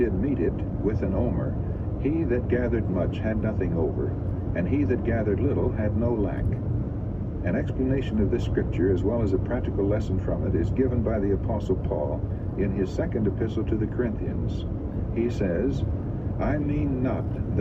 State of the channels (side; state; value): both; identical; correlation 1.00